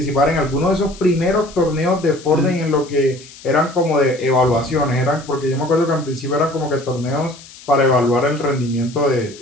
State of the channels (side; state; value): left; noise; hiss, 20 dB below the sound